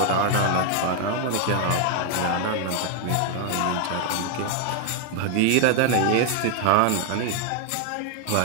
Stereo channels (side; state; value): both; different; correlation 0.00